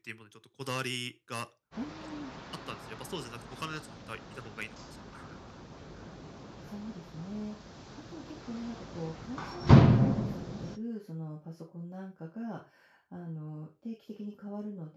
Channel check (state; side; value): identical; both; correlation 1.00